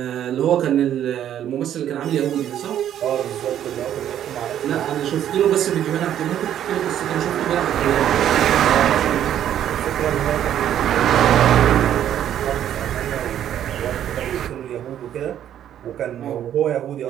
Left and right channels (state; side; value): quieter; left; 10.7 dB